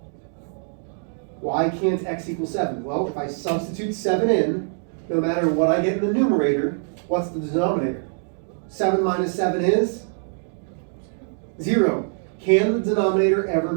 Why can't x equal 7? Well, if I substitute 7 in, no matter what I get in the numerator, what's the denominator? 7 minus 7 is 0. Can the denominator ever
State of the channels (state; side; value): silent; left; 59 dB below the other